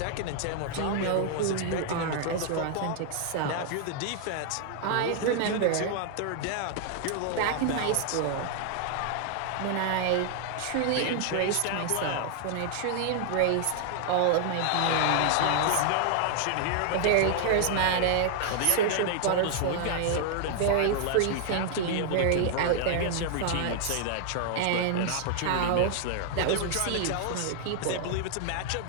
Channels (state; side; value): different; both; correlation 0.00